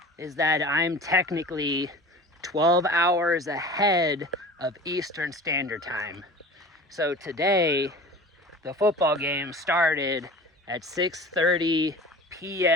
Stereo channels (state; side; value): normal; both; correlation 0.38